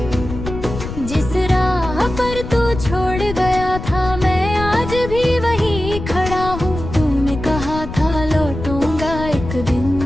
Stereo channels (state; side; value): noise; left; rumble, 8 dB below the sound